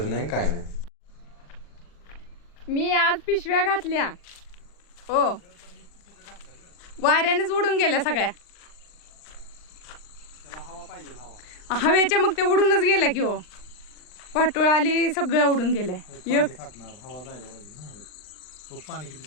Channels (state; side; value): late; right; 40 ms